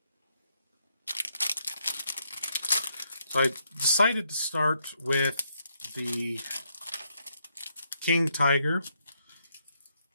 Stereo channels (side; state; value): both; inverted; correlation -0.76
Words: So I decided to start with the King Tiger.